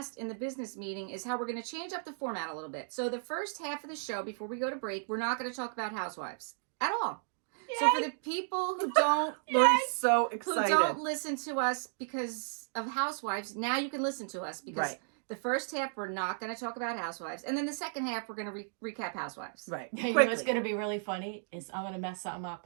in the business meeting is how we're going to change up the format a little bit. So the first half of the show, before we go to break, we're not going to talk about Housewives at all. So for the people who don't Lori's so excited. listen to us because of Housewives, now you can listen to us because Right. The first half, we're not going to talk about Housewives. And then the second half, we're going to recap Housewives. Right. You know Quickly. what's going to be really funny is I'm going to mess something up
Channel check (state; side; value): silent; left; digital silence